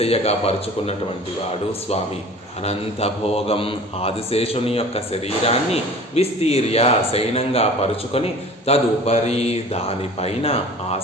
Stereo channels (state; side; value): normal; both; correlation 0.44